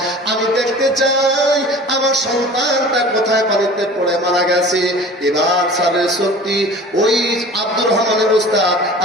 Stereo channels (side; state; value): both; normal; correlation 0.41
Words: আমি দেখতে চাই আমার সন্তানটা কোথায় পানিতে পড়ে মারা গেছে। এবার স্যারের সত্যি ওই আব্দুর রহমানের উস্তাদ